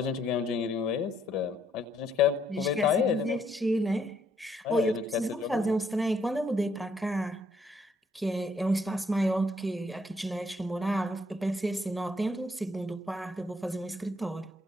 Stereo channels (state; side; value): normal; both; correlation 0.70